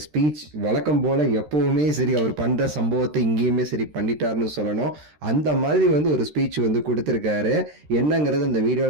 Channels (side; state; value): left; late; 13 ms